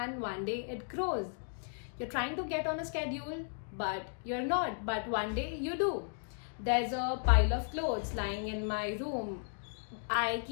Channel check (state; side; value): silent; right; digital silence